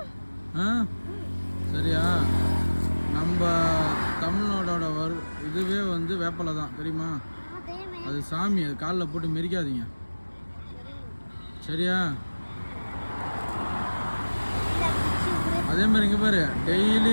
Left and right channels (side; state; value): both; inverted; correlation -1.00